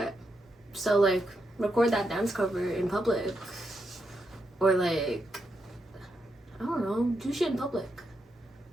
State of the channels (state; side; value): normal; both; correlation 0.82